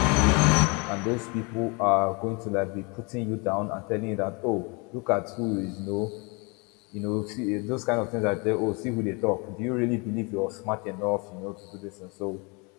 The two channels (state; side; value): quieter; right; 30.2 dB